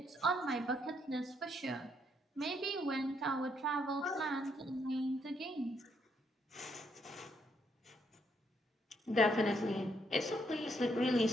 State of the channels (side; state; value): both; normal; correlation 0.73